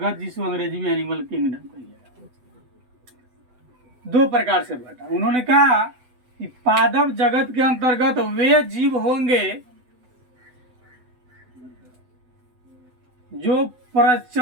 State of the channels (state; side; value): late; left; 8.0 ms